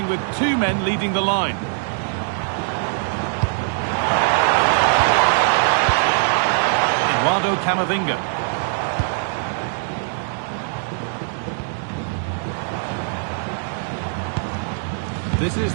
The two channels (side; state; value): left; silent; digital silence